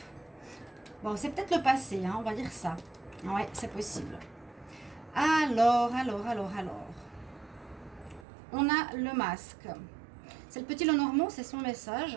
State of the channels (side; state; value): left; drops out; at 8.2 s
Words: Bon, c'est peut-être le passé, hein, on va dire ça. Ouais, c'est possible. Alors. On a le masque. C'est le petit Lenormand, c'est son